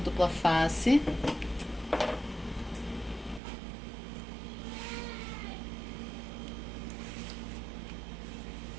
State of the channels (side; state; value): left; drops out; at 3.4 s